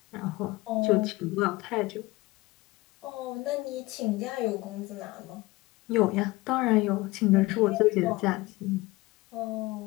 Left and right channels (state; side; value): quieter; right; 21.0 dB